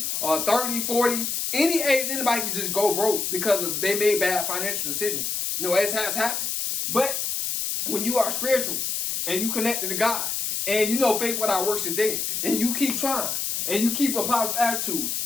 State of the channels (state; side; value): noise; left; hiss, 1 dB below the sound